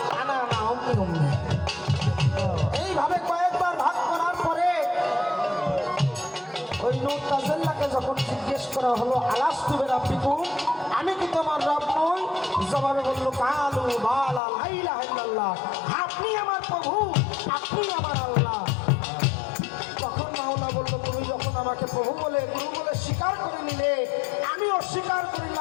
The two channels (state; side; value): drops out; right; at 14.4 s